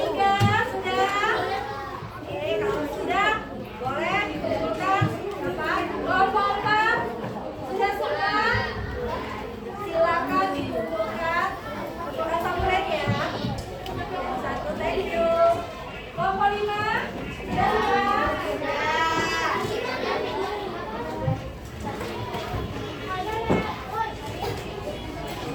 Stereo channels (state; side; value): identical; both; correlation 1.00